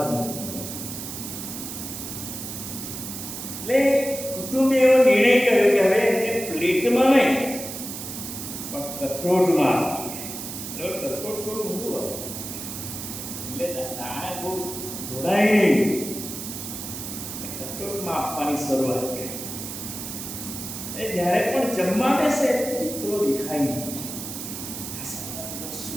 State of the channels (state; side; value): noise; right; hiss, 8 dB below the sound